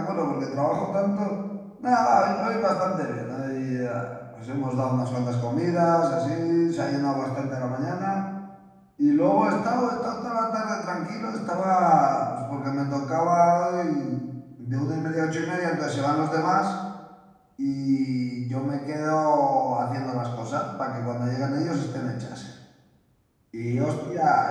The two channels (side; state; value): both; identical; correlation 1.00